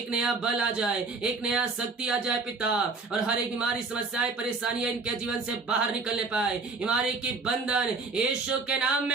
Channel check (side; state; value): left; quieter; 4.0 dB